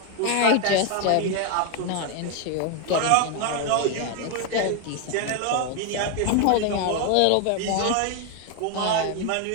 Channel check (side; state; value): both; different; correlation 0.01